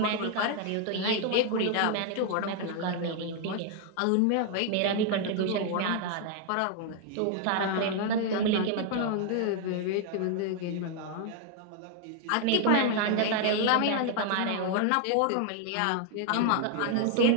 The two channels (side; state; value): both; different; correlation 0.00